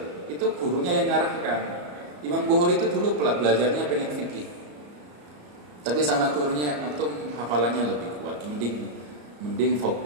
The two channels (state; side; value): late; left; 34 ms